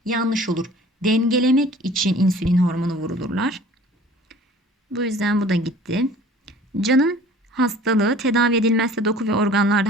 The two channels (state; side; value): normal; both; correlation 0.48